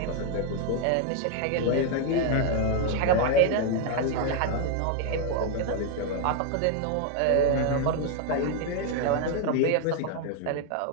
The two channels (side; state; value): both; different; correlation 0.00